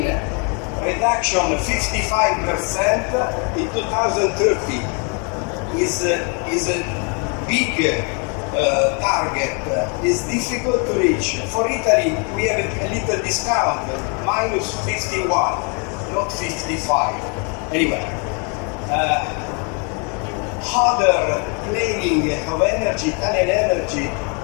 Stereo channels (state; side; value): quieter; right; 36.0 dB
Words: reduction 55% in 2030 is a big target. Is difficult to reach. For Italy, we have a little discount, minus 51, not 55. Anyway, other planning of energy, Italian energy,